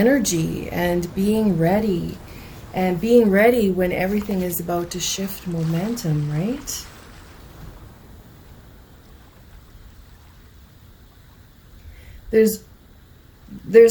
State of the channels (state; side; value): identical; both; correlation 1.00